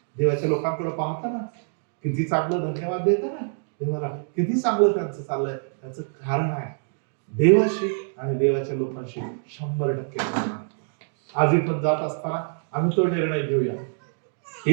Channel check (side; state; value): left; silent; digital silence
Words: देवाच्या लोकांकडे पाहता ना, किती चांगलं धन्यवाद देता ना देवाला, किती चांगलं त्यांचं चाललंय, त्याचं कारण आहे देवाशी आणि देवाच्या लोकांशी 100% आज इथून जात असताना आम्ही तो निर्णय घेऊया.